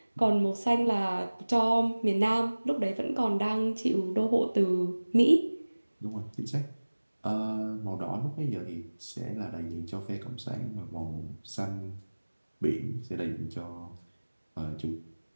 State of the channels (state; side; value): inverted; both; correlation -1.00